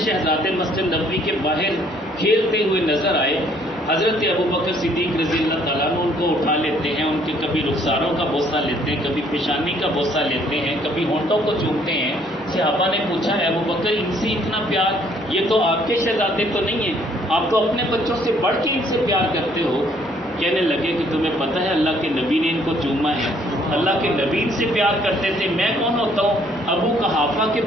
مسجد نبوی کے باہر کھیلتے ہوئے نظر آئے. حضرت ابوبکر صدیق رضی اللہ تعالیٰ عنہ ان کو اٹھا لیتے ہیں، ان کے کبھی رخساروں کا بوسہ لیتے ہیں، کبھی پیشانی کا بوسہ لیتے ہیں، کبھی ہونٹوں کو چومتے ہیں. صحابہ نے پوچھا ابوبکر ان سے اتنا پیار، یہ تو آپ کے شہزادے تو نہیں ہیں، آپ تو اپنے بچوں سے بڑھ کے ان سے پیار کرتے ہو. کہنے لگے کہ تمہیں پتہ ہے اللہ کے نبی نے ان کو چوما ہے، اللہ کے نبی ان سے پیار کرتے تھے، میں کون ہوتا ہوں ابو قحافہ کے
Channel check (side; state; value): both; normal; correlation 0.63